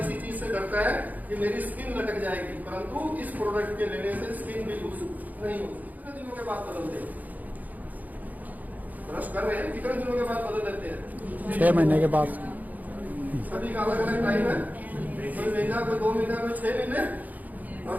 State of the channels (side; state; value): left; late; 0.080 ms